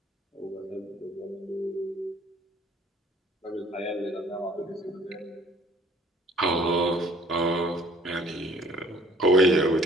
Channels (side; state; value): both; normal; correlation 0.56